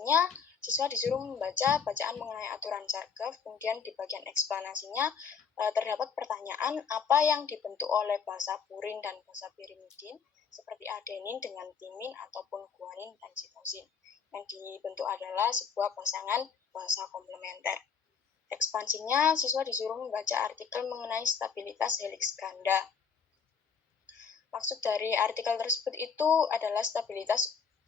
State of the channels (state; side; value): quieter; right; 6.5 dB